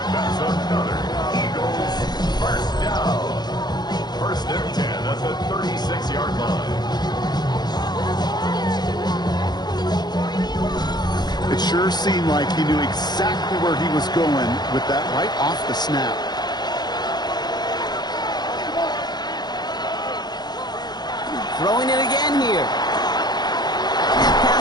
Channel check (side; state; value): right; late; 0.20 ms